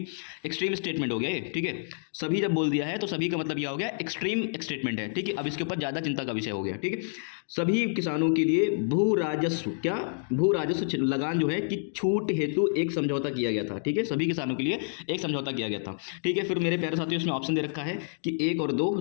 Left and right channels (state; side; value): silent; right; digital silence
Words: स्टेटमेंट हो गया ये। ठीक है, सभी जब बोल दिया है तो सभी का मतलब यह हो गया एक्सट्रीम स्टेटमेंट है। ठीक है, अब इसके ऊपर ज्यादा चिंता का विषय हो गया। ठीक है, सभी किसानों के लिए भू राजस्व, क्या? भू राजस्व लगान जो है कि छूट हेतु एक समझौता किया गया था। ठीक है, सभी किसानों के लिए एक समझौता किया गया था। ठीक है, फिर मेरे प्यारे साथियों इसमें ऑप्शन दे रखा है कि 1 और 2,